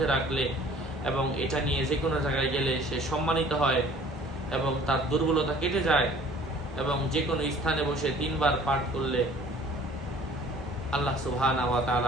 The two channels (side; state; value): both; normal; correlation 0.51